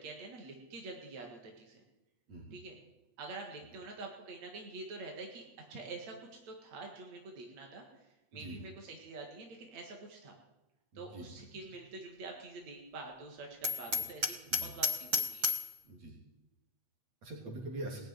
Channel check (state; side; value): late; left; 8.2 ms